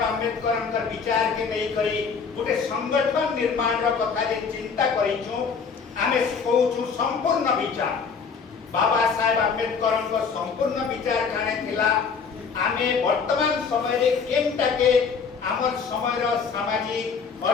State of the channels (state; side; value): quieter; right; 5.7 dB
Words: आंबेडकर विचार के नहीं करी गोटे संगठन निर्माण रो कथा जे चिंता करिछु आमे कहूछु संपूर्ण विचार बाबा साहेब आंबेडकर संपूर्ण विचार काने थिला आमे वर्तमान समय रे केमटा के हमर समय रो सामाजिक